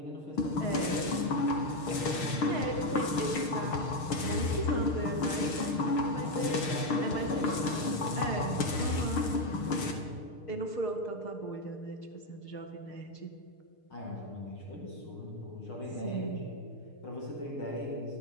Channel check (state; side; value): late; right; 6.5 ms